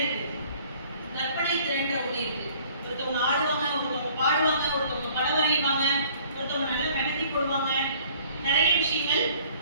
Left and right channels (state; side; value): inverted; both; correlation -0.56